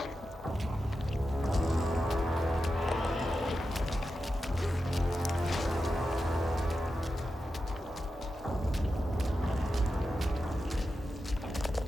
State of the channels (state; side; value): normal; both; correlation 0.90